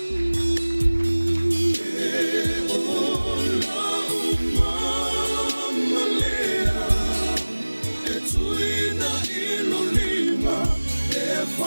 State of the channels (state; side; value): inverted; both; correlation -1.00